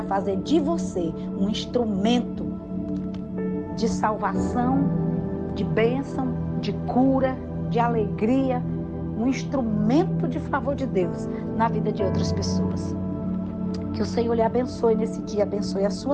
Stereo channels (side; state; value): both; identical; correlation 1.00